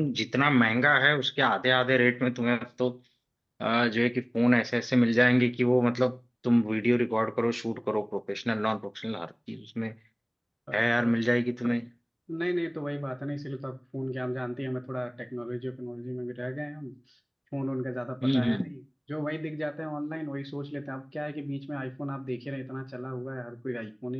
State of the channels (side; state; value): both; identical; correlation 1.00